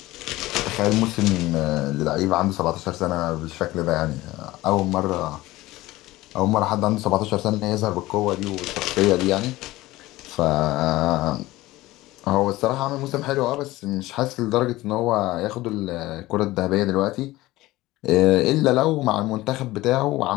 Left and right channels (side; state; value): right; quieter; 18.1 dB